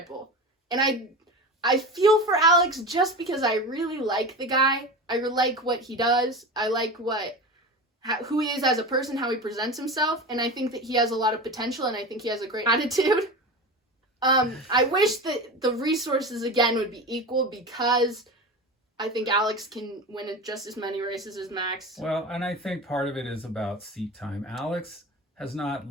Bull. And I feel for Alex just because I really like the guy. I like what he does. I like who he is as a person, how he presents himself, and I think that he has a lot of potential, and I think he has a great attitude. I wish that the resources, again, would be equal because I think Alex can win just as many races as Max. Well, and I think part of it is about seat time. Alex has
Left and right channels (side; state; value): both; normal; correlation 0.28